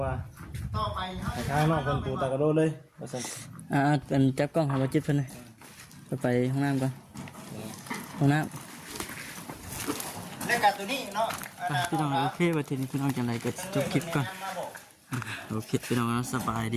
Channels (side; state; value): both; identical; correlation 1.00